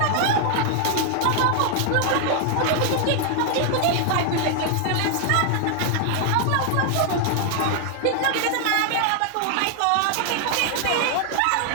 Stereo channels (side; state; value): both; different; correlation 0.00